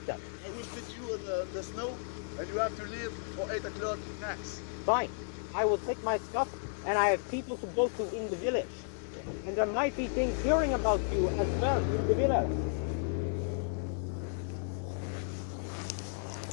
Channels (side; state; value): right; silent; digital silence